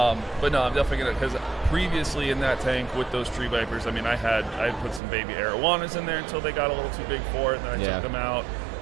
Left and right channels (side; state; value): left; drops out; at 5.0 s